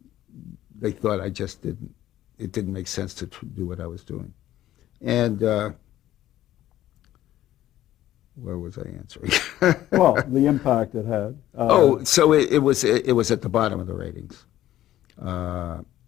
They thought it didn't make sense to do what I was doing. And where was I answering? Well, the impact it had. So it was at the bottom of the ratings.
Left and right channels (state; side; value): quieter; right; 13.5 dB